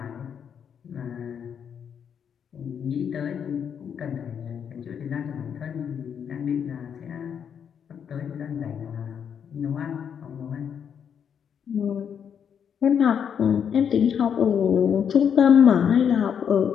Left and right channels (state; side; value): quieter; right; 7.8 dB